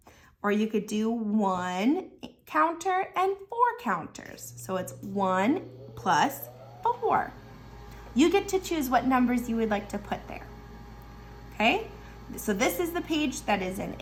Or you could do 1 counter and 4 counters. So it's 1 plus 4. You get to choose what numbers you would like to put there. Okay? So this is the page that is an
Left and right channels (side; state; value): both; identical; correlation 1.00